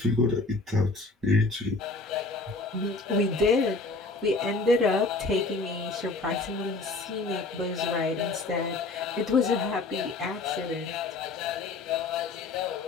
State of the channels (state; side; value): quieter; right; 3.5 dB